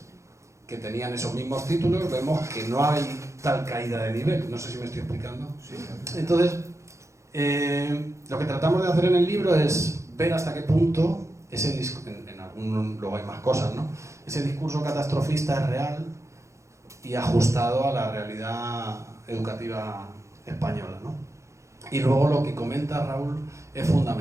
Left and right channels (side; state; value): left; late; 0.14 ms